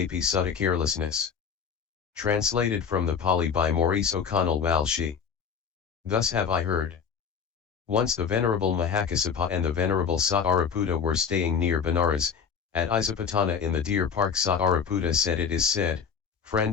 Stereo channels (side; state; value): right; quieter; 6.7 dB